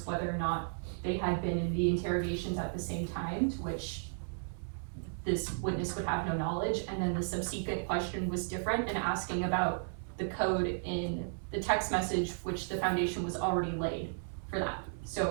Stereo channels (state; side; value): silent; left; 55 dB below the other